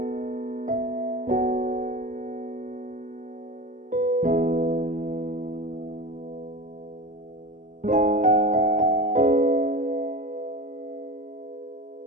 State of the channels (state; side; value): late; left; 0.37 ms